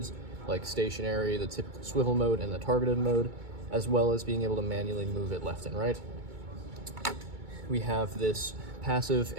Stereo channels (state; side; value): late; left; 2.2 ms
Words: like stationary, the typical swivel mode, and the targeted mode, as well as being able to manually move it left and right. We have this passive